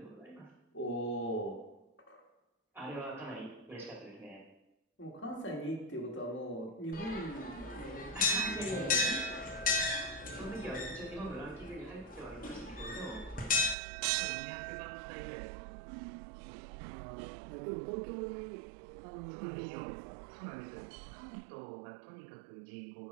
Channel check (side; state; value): left; drops out; at 13.8 s